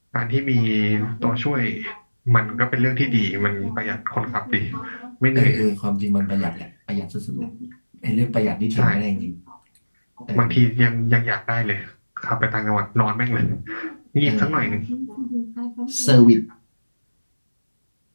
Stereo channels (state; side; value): inverted; both; correlation -1.00